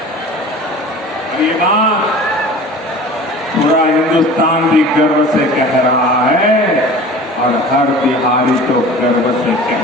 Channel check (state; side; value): normal; both; correlation 0.40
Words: ये बात पूरा हिंदुस्तान भी गर्व से कह रहा है और हर बिहारी तो गर्व से